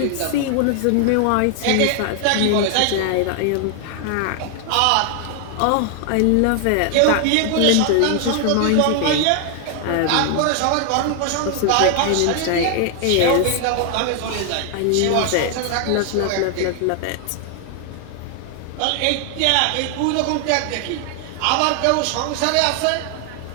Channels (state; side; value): different; both; correlation 0.00